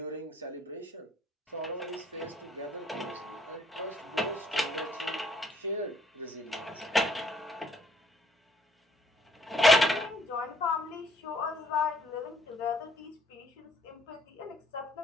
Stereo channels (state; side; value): normal; both; correlation 0.64